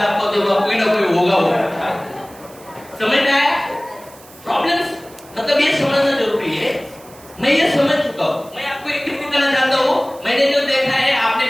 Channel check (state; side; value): noise; right; hiss, 23 dB below the sound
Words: आपको तो कोई ना कोई होगा। समझ में आया? प्रॉब्लम्स मतलब ये समझना जरूरी है। मैं ये समझ चुका हूँ। मैं आपको एक चीज बताना चाहता हूँ, मैंने जो देखा है आपने